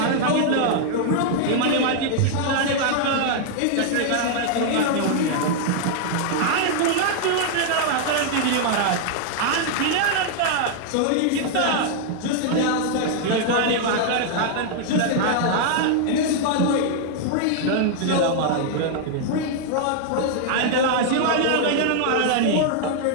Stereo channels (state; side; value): different; both; correlation 0.00